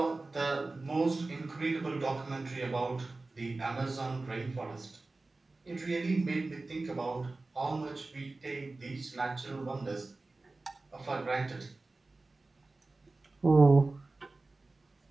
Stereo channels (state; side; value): quieter; left; 3.3 dB